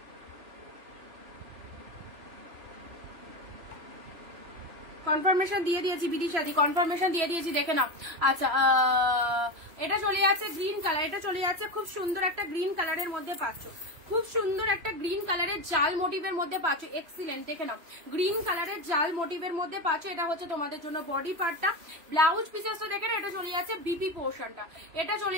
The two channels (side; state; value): left; late; 3.0 ms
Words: কনফার্মেশন দিয়ে দিয়েছি, বিদিশাদি কনফার্মেশন দিয়ে দিয়েছি, দেখে নাও। আচ্ছা এটা চলে যাচ্ছে গ্রিন কালার, এটা চলে যাচ্ছে খুব সুন্দর একটা গ্রিন কালারের মধ্যে পাচ্ছ, খুব সুন্দর একটা গ্রিন কালারের জাল মোটিভের মধ্যে পাচ্ছ, এক্সিলেন্ট, দেখে নাও গ্রিন কালারের জাল মোটিভের মধ্যে পাচ্ছ। এটা হচ্ছে তোমাদের জন্য বডি পার্টটা, ব্লাউজ পিসেসটা দেখে না, এটা চলে যাচ্ছে বিপি পোর্শনটা, এটা চলে